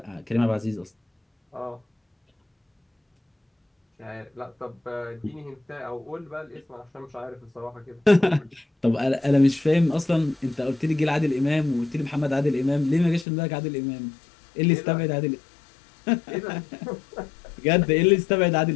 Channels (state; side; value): drops out; right; at 13.2 s